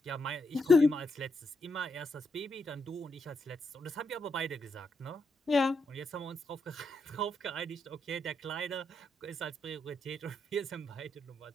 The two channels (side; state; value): both; normal; correlation 0.80